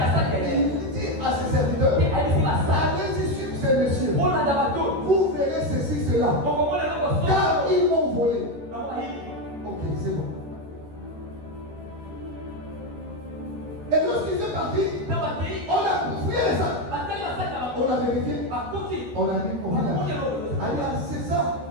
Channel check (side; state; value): left; late; 13 ms